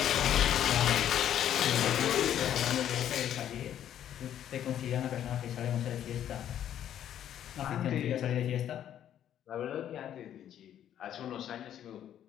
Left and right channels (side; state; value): right; quieter; 10.6 dB